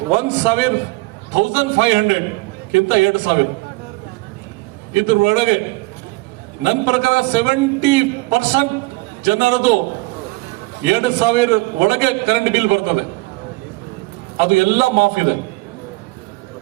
ಕಿಂತ 2,000 ಇದ್ರ ಒಳಗೆ ನನ್ನ ಪ್ರಕಾರ 70% ಜನರದು 2,000 ಒಳಗೆ ಕರೆಂಟ್ ಬಿಲ್ ಬರ್ತದೆ. ಅದು ಎಲ್ಲ ಮಾಫ್ ಇದೆ.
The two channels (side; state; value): left; quieter; 23.9 dB